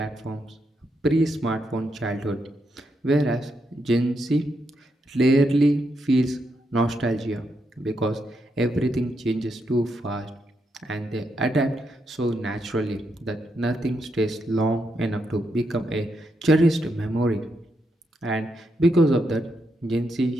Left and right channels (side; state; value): both; normal; correlation 0.81